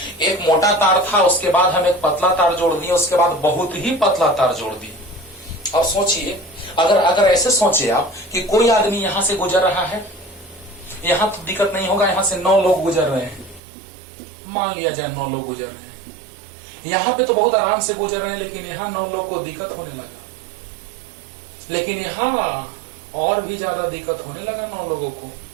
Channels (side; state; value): left; drops out; at 13.6 s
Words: एक मोटा तार था, उसके बाद हम एक पतला तार जोड़ दिए, उसके बाद बहुत ही पतला तार जोड़ दिए। अब सोचिए, अगर ऐसे सोचिए आप कि कोई आदमी यहां से गुजर रहा है, यहां तो दिक्कत नहीं होगा, यहां से 9 लोग गुजर रहे हैं, मान लिया जाए 9 लोग गुजर रहे हैं, यहां पे तो बहुत आराम से गुजर रहे हैं, लेकिन यहां 9 लोग को दिक्कत होने लगा, लेकिन यहां और भी ज्यादा दिक्कत होने लगा 9 लोगों को।